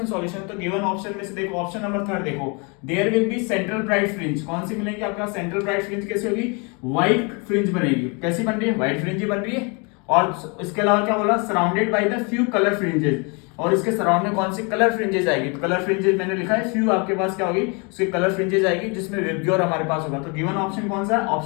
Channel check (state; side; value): quieter; right; 32.3 dB